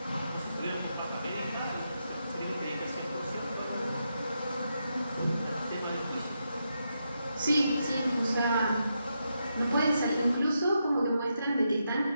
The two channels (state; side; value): inverted; both; correlation -0.84